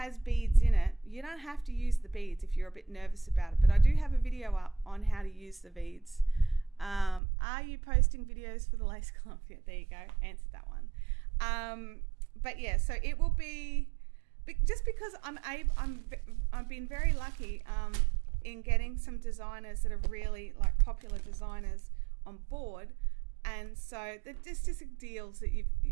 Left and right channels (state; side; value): drops out; left; at 7.2 s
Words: beads in it, you don't have to use the beads if you're a bit nervous about it. But I do have a video up on how to use the beads. Are you posting videos for the lace club? Yeah, there you go, answered that one. But yeah, so it will be, just because I've been very lucky in getting some designers that are really like popular designers on board. And so there's just deals